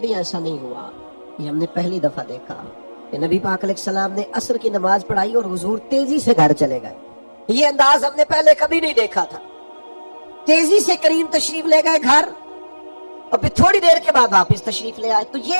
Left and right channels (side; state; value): both; inverted; correlation -1.00